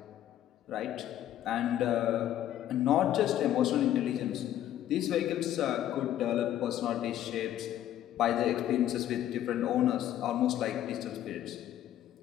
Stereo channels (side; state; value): right; quieter; 12.0 dB